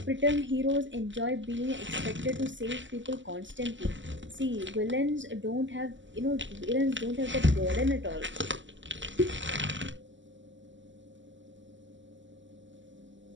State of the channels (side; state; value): left; late; 0.54 ms